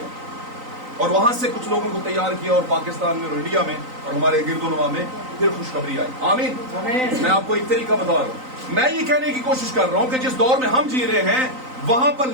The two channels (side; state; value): left; late; 3.9 ms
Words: اور وہاں سے کچھ لوگوں کو تیار کیا اور پاکستان میں اور انڈیا میں اور ہمارے گرد و نواح میں پھر خوشخبری آئی. آمین. میں آپ کو ایک طریقہ بتا رہا ہوں. میں یہ کہنے کی کوشش کر رہا ہوں کہ جس دور میں ہم جی رہے ہیں وہاں پر